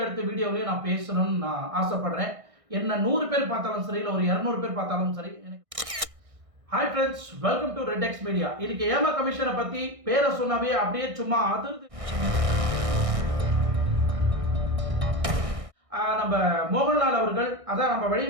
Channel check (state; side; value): late; left; 1.6 ms